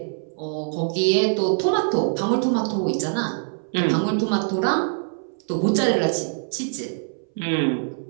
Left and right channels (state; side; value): silent; left; 60 dB below the other